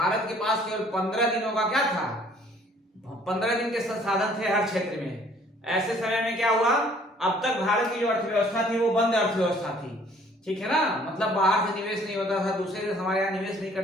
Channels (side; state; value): both; normal; correlation 0.58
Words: के पास केवल 15 दिनों का क्या था, 15 दिन के संसाधन थे हर क्षेत्र में। ऐसे समय में क्या हुआ, अब तक भारत की जो अर्थव्यवस्था थी वो बंद अर्थव्यवस्था थी। ठीक है ना, मतलब बाहर से निवेश नहीं होता था, दूसरे देश हमारे यहाँ निवेश नहीं